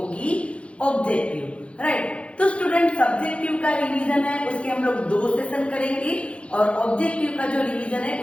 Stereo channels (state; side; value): late; right; 0.061 ms